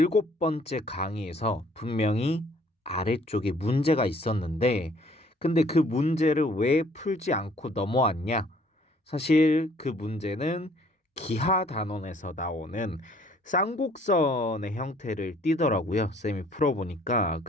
번째 강의에서 분명히 아래쪽에 문제가 있었는데, 근데 그 문제를 왜 풀지 않고 넘어왔냐? 사실 그 문제는 기하 단원에서 나오는 쌍곡선의 형태를 띠더라고요. 쌤이 풀어보니까.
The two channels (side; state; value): both; normal; correlation 0.59